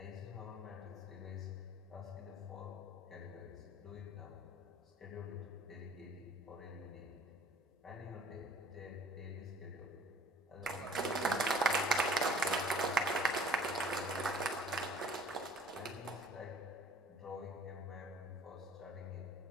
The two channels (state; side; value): normal; both; correlation 0.52